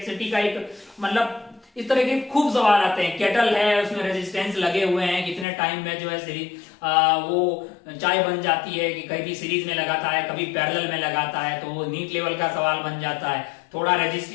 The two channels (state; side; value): drops out; right; at 5.5 s